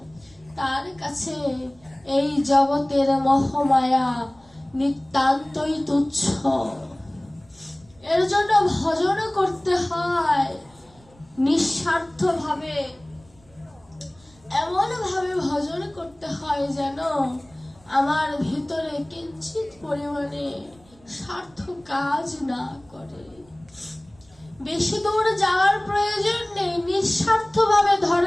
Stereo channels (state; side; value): noise; right; rumble, 29 dB below the sound